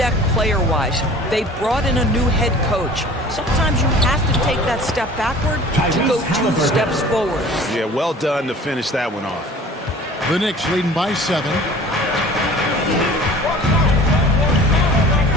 player-wise. They brought in a new head coach. Sometimes you have to take that step backward to go 2 steps forward. Yeah, well done to finish that one off. The Knicks leading by 7.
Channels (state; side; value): normal; both; correlation 0.45